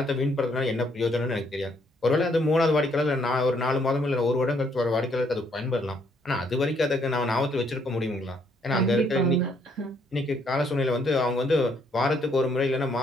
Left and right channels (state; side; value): normal; both; correlation 0.69